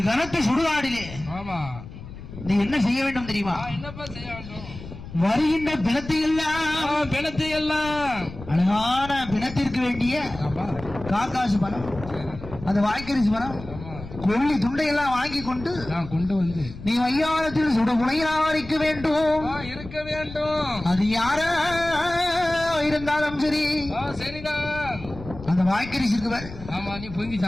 கனத்த சுடுகாடிலே நீ என்ன செய்ய வேண்டும் தெரியுமா? வருகின்ற பிணத்தை எல்லாம் அழகான பிணத்திற்கு வேண்டிய காக்காசு பணம், அந்த வாய்க்கரிசி பணம், கொள்ளி துண்டையெல்லாம் வாங்கி கொண்டு வந்து நீ மையானத்தில் சுட முனையாரிக்க வேண்டும். அது யாரா இருந்தாலும் சரி, சரிதான். அந்த வாய்க்கரிசி இருக்கு, நீ பொங்கி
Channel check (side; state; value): left; noise; rumble, 14 dB below the sound